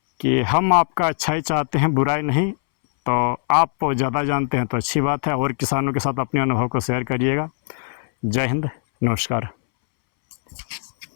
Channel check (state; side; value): silent; right; 65 dB below the other